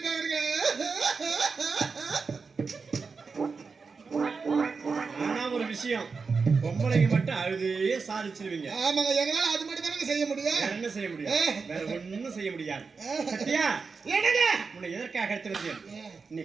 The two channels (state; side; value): quieter; left; 4.9 dB